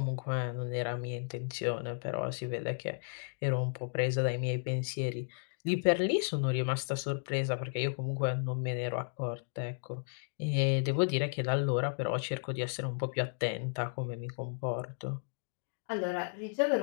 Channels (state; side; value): silent; right; digital silence